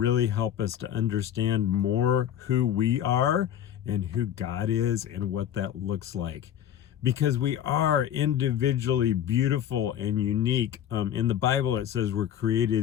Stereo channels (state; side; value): quieter; right; 10.3 dB